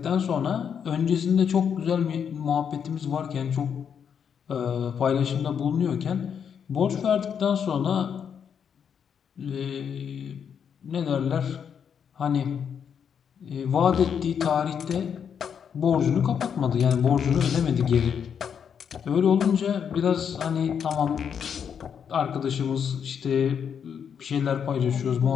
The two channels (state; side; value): quieter; right; 7.6 dB